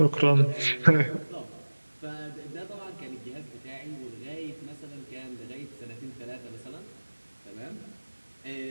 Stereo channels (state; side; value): inverted; both; correlation -1.00